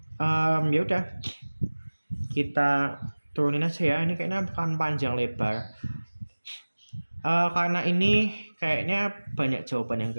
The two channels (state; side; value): inverted; both; correlation -1.00